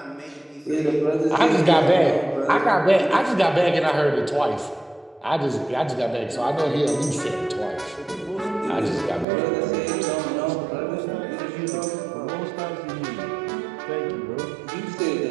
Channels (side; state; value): left; drops out; at 9.2 s